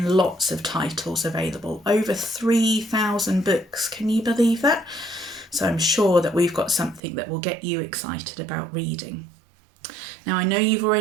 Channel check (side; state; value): left; drops out; at 7.0 s